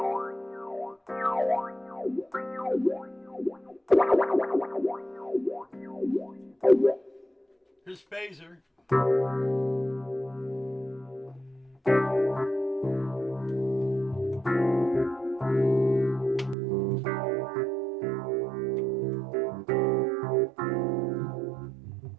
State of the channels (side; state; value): left; drops out; at 16.6 s